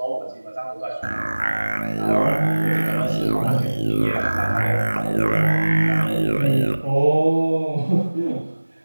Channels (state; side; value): inverted; both; correlation -1.00